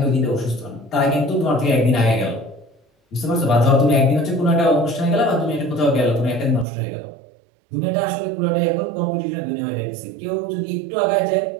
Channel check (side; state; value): left; drops out; at 6.7 s